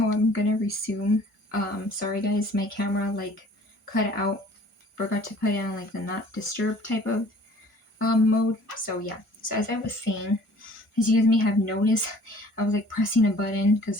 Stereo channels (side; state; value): right; late; 1.4 ms